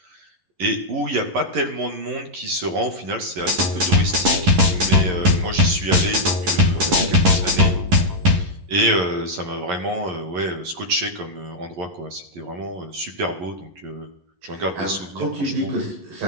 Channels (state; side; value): late; left; 11 ms